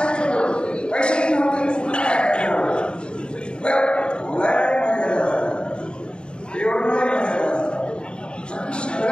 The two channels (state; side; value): late; right; 0.051 ms